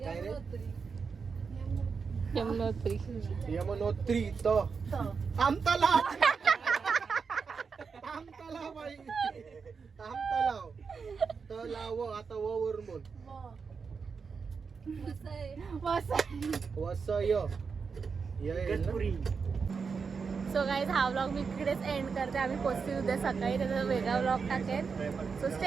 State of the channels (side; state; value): left; quieter; 5.5 dB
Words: काय रे यमुनोत्री. यमुनोत्री तो आमतलाव. आमतलाव बाई आमतलाव तलाव. आता व वरून बोल. वसय गणपुरी. सो गाईज हा व्लॉग मी इकडेच एंड करते. आम्ही पोचतील उद्या सकाळी. त्याचा वेगळा व्लॉग टाकेल. सो